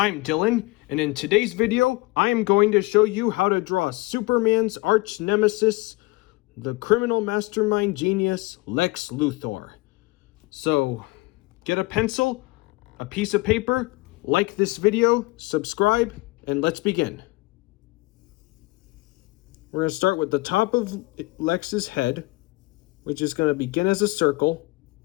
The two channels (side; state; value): right; quieter; 23.1 dB